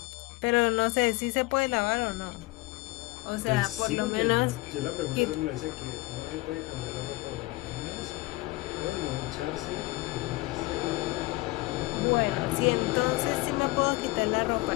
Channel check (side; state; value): right; quieter; 20.7 dB